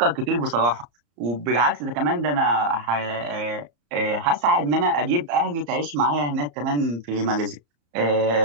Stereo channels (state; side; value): late; left; 34 ms